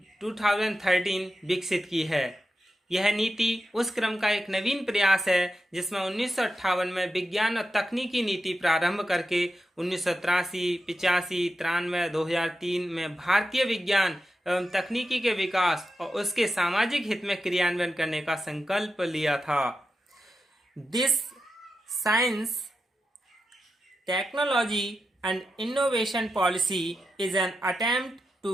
2013 विकसित की है। यह नीति उस क्रम का एक नवीन प्रयास है जिसमें 1958 में विज्ञान और तकनीकी नीति प्रारंभ करके 1983, 85, 93, 2003 में भारतीय विज्ञान एवं तकनीकी के विकास और उसके सामाजिक हित में क्रियान्वयन करने का संकल्प लिया था। This science technology and innovation policy is an attempt to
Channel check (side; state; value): both; normal; correlation 0.89